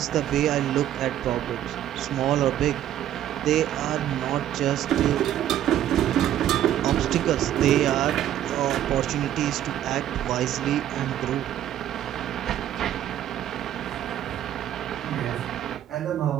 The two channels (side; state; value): left; quieter; 11.7 dB